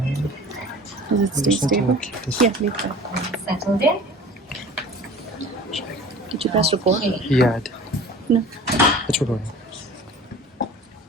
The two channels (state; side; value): normal; both; correlation 0.43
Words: Does it stay stable? Keep this. Yeah, leave that. Settled in? Did you press record? Okay. Yeah, No. it's recording.